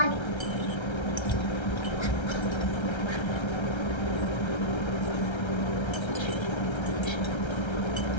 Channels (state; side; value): late; right; 1.3 ms